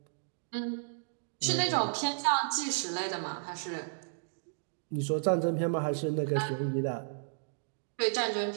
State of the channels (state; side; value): silent; left; digital silence